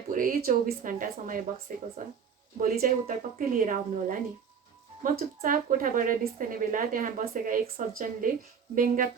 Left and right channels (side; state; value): left; quieter; 6.8 dB